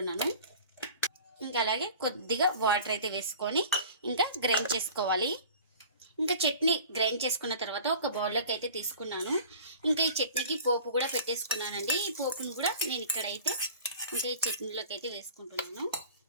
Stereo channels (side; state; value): both; inverted; correlation -0.43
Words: ఇంకా అలాగే కొద్దిగా వాటర్ అయితే వేసుకొని ఇంకా గ్రైండ్ చేసుకోవాలి. ఇంకా చట్నీ గ్రైండ్ చేసుకున్న తర్వాత ఒక బౌల్లోకి అయితే తీసుకున్నాను. ఇంకా ఈ చట్నీకి పోపు కూడా పెట్టేసుకున్నానండి. ఈ పోపును కూడా నేను ఇక్కడైతే ఇంకా ఈ చట్నీలోకి అయితే వేసుకుంటున్నాను.